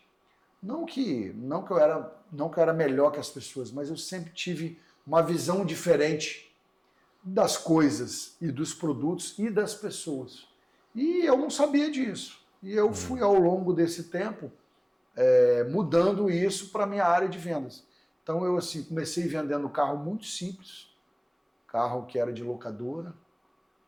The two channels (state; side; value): identical; both; correlation 1.00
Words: Não que eu era melhor que as pessoas, mas eu sempre tive uma visão diferente das coisas e dos produtos e das pessoas. E eu não sabia disso. E eu fui, ao longo desse tempo, mudando isso para a minha área de vendas. Então eu assim, comecei vendendo carro muito simples, carro que era de locadora,